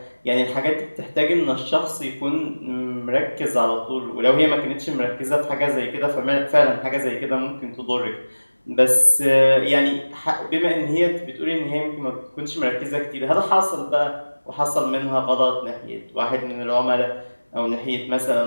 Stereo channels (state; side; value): inverted; both; correlation -1.00